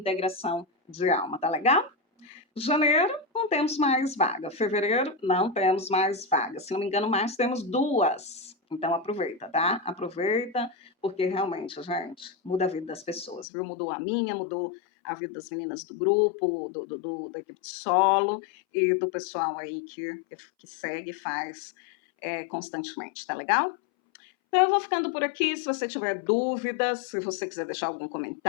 de alma, tá legal? Janeiro, não temos mais vaga. Fevereiro, não temos mais vaga. Se não me engano, mais temos 2. Então, aproveita, tá? Aproveita, porque realmente, gente, muda a vida das pessoas, viu? Mudou a minha, mudou a vida das meninas do grupo, da equipe de solo e do pessoal aí que segue e faz constantemente, tá legal? Então, eu vou ficando por aqui. Se você tiver dúvidas, se você quiser deixar algum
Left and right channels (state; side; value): drops out; right; at 13.5 s